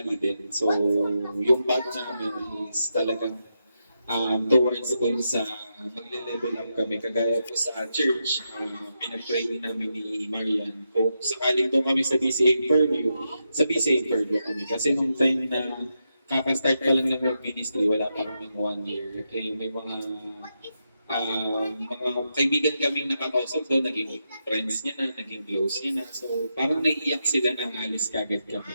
din. So, yung path namin is talagang towards dun sa magle-level up kami. Kagaya po sa church, pinag-pray namin ni Marian. Kung sakaling doon kami sa BCA Fairview, sa BCA Fairview kami. Kasi nung time na kaka-start pa lang ng ministry, wala pa kami 1 year. Okay, may mga kaibigan kaming nakakausap doon, naging friends niya na, naging close niya na. So, parang naiiyak sila na alis kagad kami.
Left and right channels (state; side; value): inverted; both; correlation -0.85